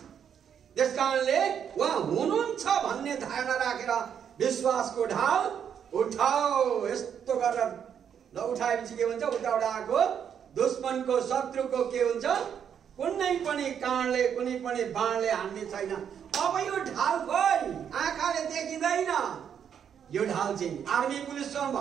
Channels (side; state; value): left; quieter; 8.3 dB